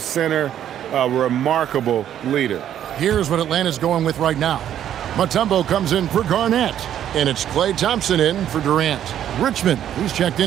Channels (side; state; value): left; quieter; 10.6 dB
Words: a remarkable leader. Here's what Atlanta's going with right now. Mutombo comes in for Garnett, and it's Klay Thompson in for Durant. Richmond, he's checked